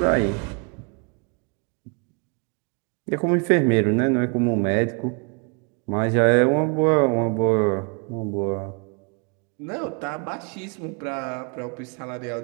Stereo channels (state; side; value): quieter; left; 35.1 dB